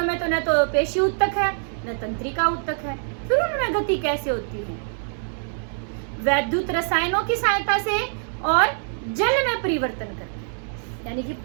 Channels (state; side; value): silent; left; digital silence